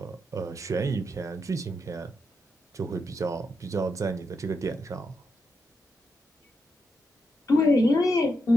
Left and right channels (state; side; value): normal; both; correlation 0.83